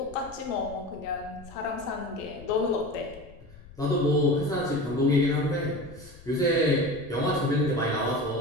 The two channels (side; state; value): left; noise; rumble, 20 dB below the sound